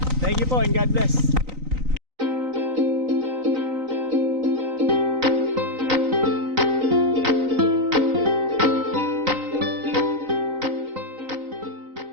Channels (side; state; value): left; late; 3.9 ms